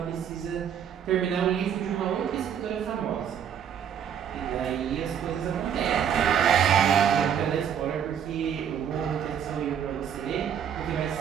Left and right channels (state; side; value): quieter; left; 8.5 dB